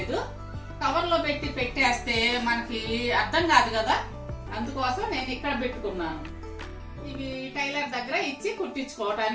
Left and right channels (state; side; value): identical; both; correlation 1.00